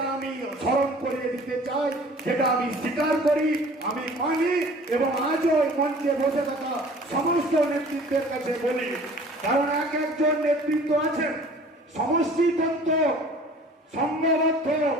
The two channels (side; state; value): both; normal; correlation 0.48